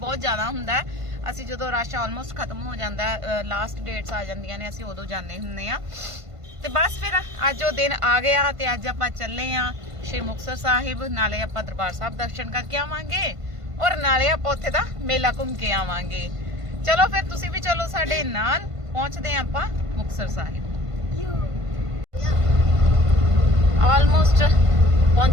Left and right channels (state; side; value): late; left; 1.5 ms